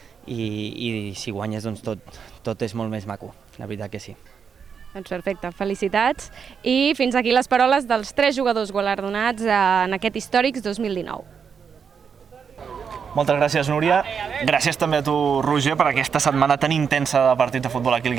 i si guanyes doncs tot és molt més maco, la veritat que sí. Doncs perfecte, felicitats. I fins aquí les paroles dels 3 jugadors guardonats en aquest Històrics 2019. Moltes gràcies, Núria. Gràcies també a tu, Roger, per aquesta setmana tan intensa de partit de futbol aquí al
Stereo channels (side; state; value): left; quieter; 6.6 dB